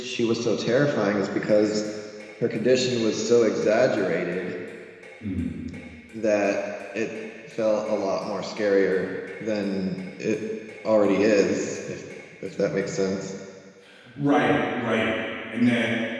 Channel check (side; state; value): both; identical; correlation 1.00